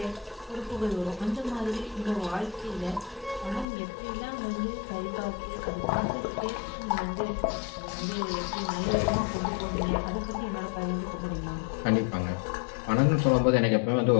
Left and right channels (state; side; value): drops out; right; at 3.7 s